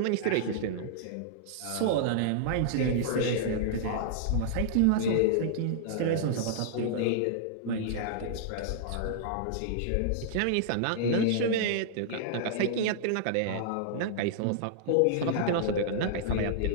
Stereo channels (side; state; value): both; different; correlation -0.02